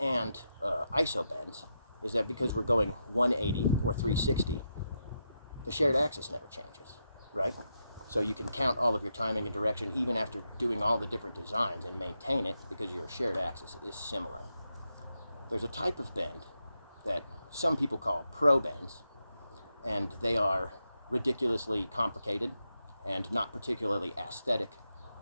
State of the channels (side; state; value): both; inverted; correlation -0.85